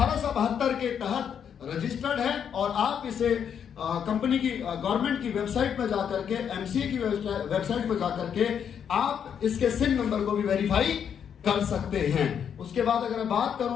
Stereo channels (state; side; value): quieter; right; 8.0 dB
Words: के तहत रजिस्टर्ड है और आप इसे कंपनी की गवर्नमेंट की वेबसाइट पर जाकर के, एमसीए की वेबसाइट पर जाकर के आप इसके सिन नंबर को भी वेरीफाई कर सकते हैं। उसके बाद अगर मैं बात